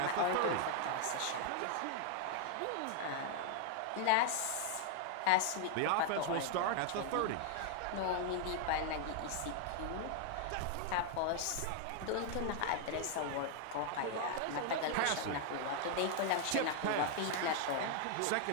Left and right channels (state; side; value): different; both; correlation 0.00